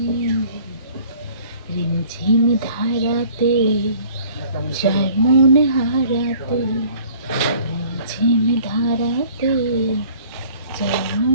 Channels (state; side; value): inverted; both; correlation -0.52